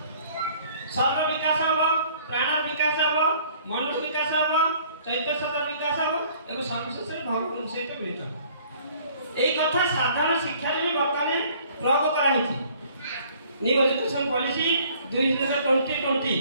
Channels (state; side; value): inverted; both; correlation -0.56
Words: शरीर विकास हम प्राण विकास हम मन विकास हम चैत्य सतर विकास हम एवं सर्वशेष भगवान सहित मिलित यही कथा साधारण शिक्षा भी बर्तमान प्रयोग कराई न्यू एजुकेशन पॉलिसी 2020